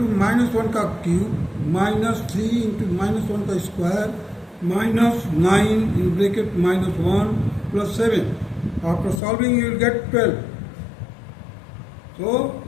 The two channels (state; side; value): drops out; right; at 9.2 s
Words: minus 1 ka cube minus 3 into minus 1 ka square minus 9 in bracket minus 1 plus 7. After solving you will get 12. So